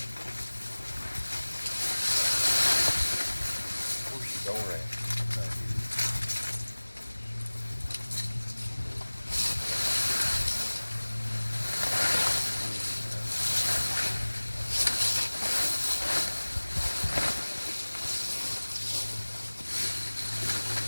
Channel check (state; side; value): inverted; both; correlation -1.00